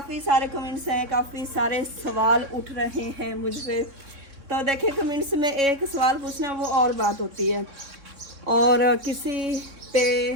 सारे कमेंट्स हैं, काफ़ी सारे सवाल उठ रहे हैं मुझ पर। तो देखें कमेंट्स में एक सवाल पूछना वो और बात होती है और किसी पे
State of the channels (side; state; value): left; late; 3.6 ms